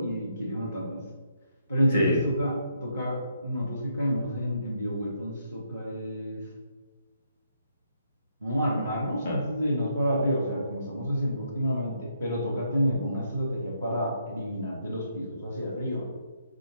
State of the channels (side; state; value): both; inverted; correlation -0.75